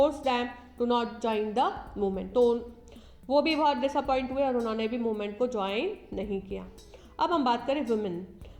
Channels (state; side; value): identical; both; correlation 1.00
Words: them to not join the movement. तो वो भी बहुत डिसअपॉइंट हुए और उन्होंने भी मूवमेंट को ज्वाइन नहीं किया। अब हम बात करें वुमेन,